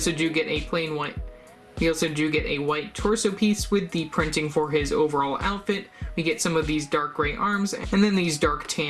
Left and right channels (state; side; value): identical; both; correlation 1.00